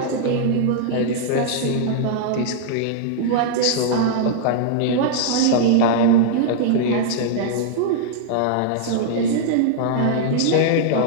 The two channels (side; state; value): both; different; correlation -0.01